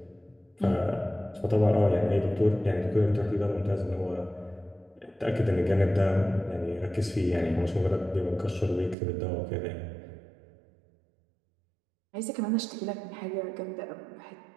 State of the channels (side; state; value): left; drops out; at 9.0 s